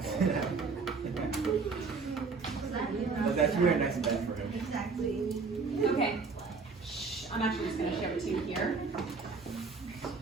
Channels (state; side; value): quieter; left; 4.6 dB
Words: But that's really nice and bad for him. Okay. Shh, I'm actually just gonna show it to you here.